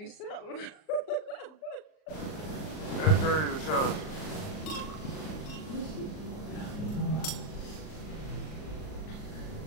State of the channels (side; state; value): right; late; 39 ms